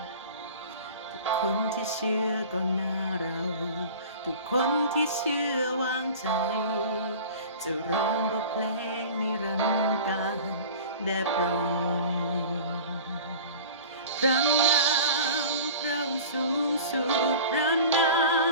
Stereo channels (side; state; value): both; inverted; correlation -0.39